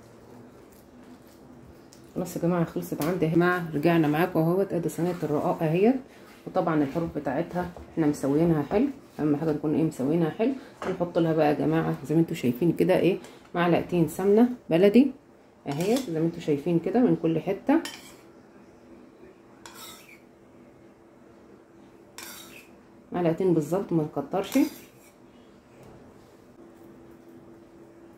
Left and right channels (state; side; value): identical; both; correlation 1.00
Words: خلاص يا جماعه خلصت عندي يا جماعه. رجعنا معاكم اهوت، ادي صينيه الرقاق اهيت، وطبعا الحروف بتاعتها احنا مسويينها حلو. اهم حاجه نكون ايه مسويينها حلو. هنحط لها بقى يا جماعه زي ما انتم شايفين كده ايه معلقتين سمنه بلدي اهيت زي ما انتم شايفين كده من كل حته. معلقتين بالظبط ما نكترش